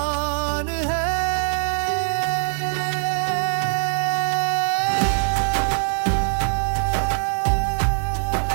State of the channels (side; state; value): left; silent; digital silence